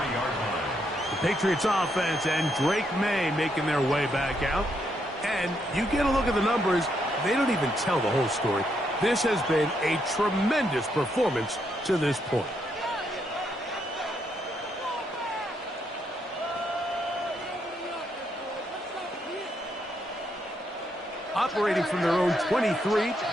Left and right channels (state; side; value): normal; both; correlation 0.77